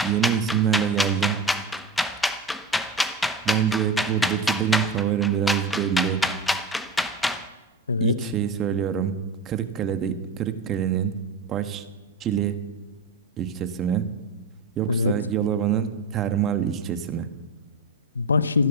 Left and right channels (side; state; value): left; quieter; 3.4 dB